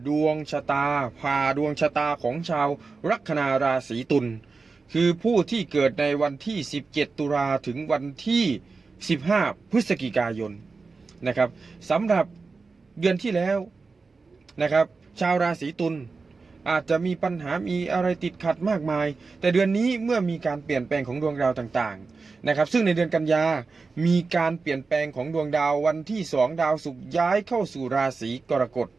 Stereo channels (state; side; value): quieter; left; 4.3 dB